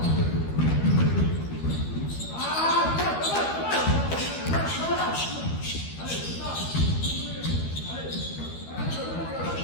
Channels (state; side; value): late; right; 12 ms